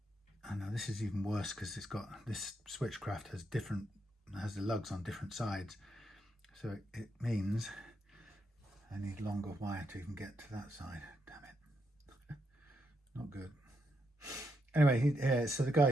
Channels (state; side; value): normal; both; correlation 0.80